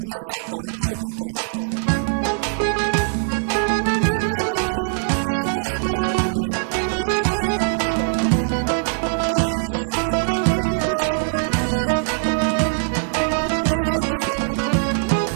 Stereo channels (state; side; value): silent; left; digital silence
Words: ahvalata kayda. Hiketani suva avasa hüre est hayışemiş hana. Çekhist hadi ikhperi fiz çubanvalı izva. Gıçist hadi zlahata.